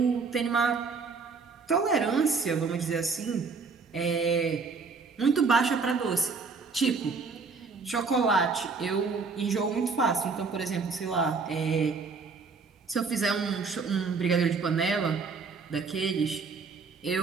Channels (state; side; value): quieter; left; 4.7 dB